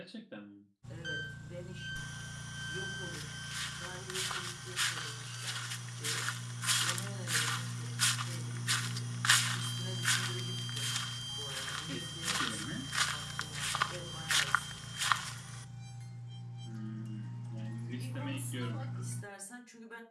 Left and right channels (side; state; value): both; identical; correlation 1.00